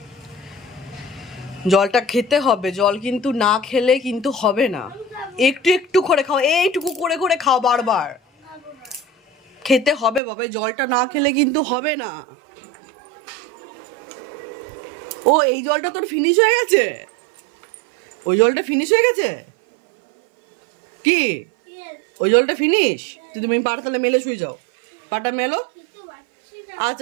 জলটা খেতে হবে, জল কিন্তু না খেলে কিন্তু হবে না। একটু একটু করে খাও, এইটুকু করে করে খাও, বারবার খেতে হবে বাবা। জলটা না খেলে কিন্তু হবে না। ও এই জলটা তোর ফিনিশ হয়ে গেছে? ওই জলটা ফিনিশ হয়ে গেছে কি? ওই জলটা ফিনিশ? তুমি পাটা তাহলে মেলে শুয়ে যাও, পাটা মেলো।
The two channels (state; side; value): drops out; left; at 10.2 s